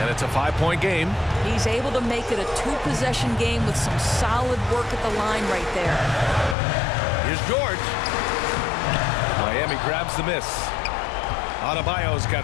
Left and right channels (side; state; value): right; drops out; at 6.6 s